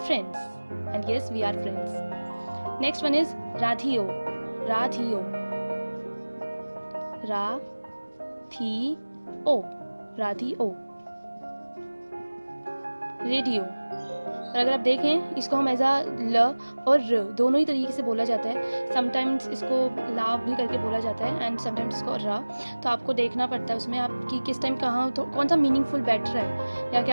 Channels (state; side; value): inverted; both; correlation -1.00